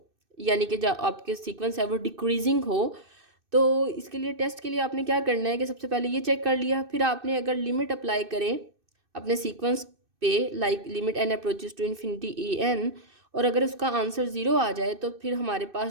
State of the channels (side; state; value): left; late; 2.6 ms